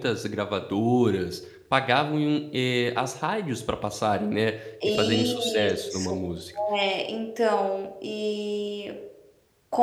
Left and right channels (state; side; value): identical; both; correlation 1.00